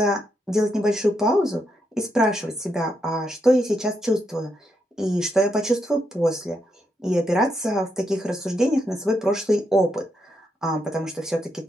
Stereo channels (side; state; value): both; normal; correlation 0.80